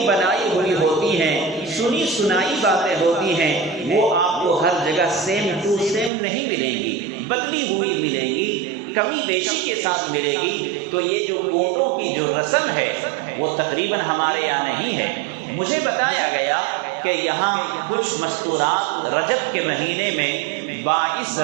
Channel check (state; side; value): drops out; left; at 6.1 s